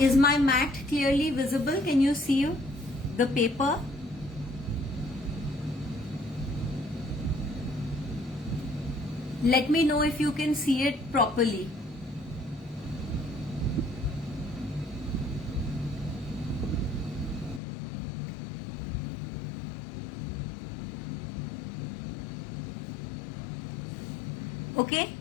my mat clearly visible? Can you see the paper? Let me know if you can see it properly. Okay,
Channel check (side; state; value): right; drops out; at 17.6 s